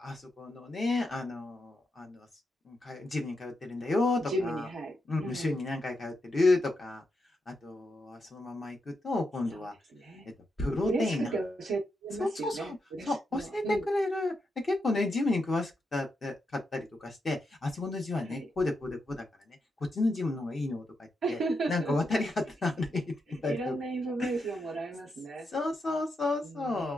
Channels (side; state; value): both; normal; correlation 0.84